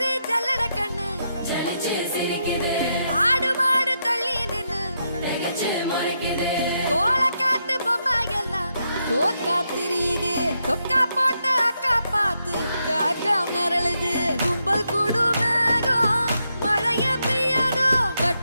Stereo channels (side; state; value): both; inverted; correlation -0.82